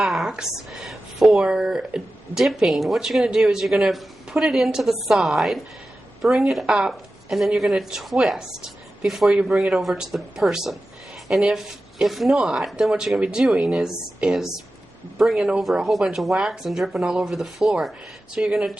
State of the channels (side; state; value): both; normal; correlation 0.94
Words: for dipping, what you're going to do is you're going to put it into the side, bring it up, and then you're going to twist before you bring it over to the person. And if not, then what you're going to be doing is bringing over a whole bunch of wax and dripping all over the floor. So you're going to